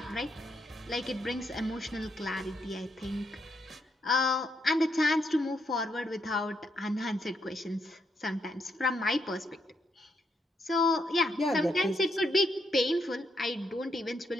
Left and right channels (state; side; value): normal; both; correlation 0.77